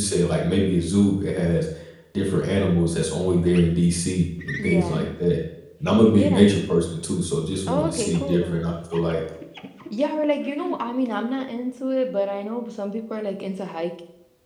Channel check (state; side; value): identical; both; correlation 1.00